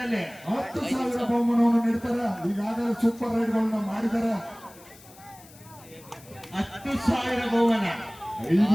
10,000 ಬಹುಮಾನವನ್ನು ನೀಡ್ತಾರೆ. ಈಗಾಗಲೇ ಸೂಪರ್ ರೈಡ್ಗಳನ್ನ ಮಾಡಿದ್ದಾರೆ. 10,000 ಬಹುಮಾನ.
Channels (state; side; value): noise; left; hiss, 23 dB below the sound